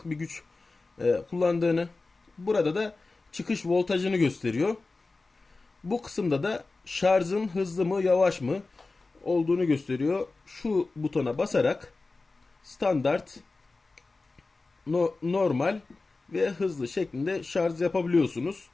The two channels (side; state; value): right; quieter; 3.6 dB